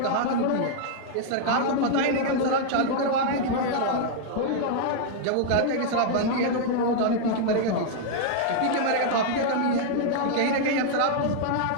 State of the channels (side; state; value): both; different; correlation -0.01